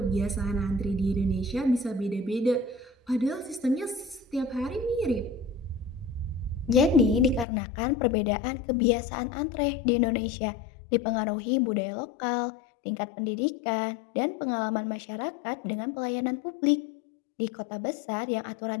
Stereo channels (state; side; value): drops out; right; at 7.5 s